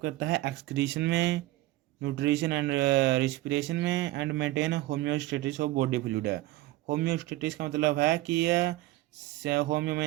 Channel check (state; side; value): quieter; left; 17.3 dB